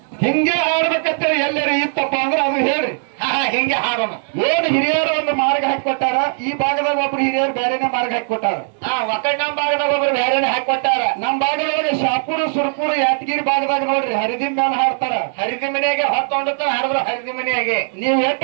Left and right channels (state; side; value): silent; left; digital silence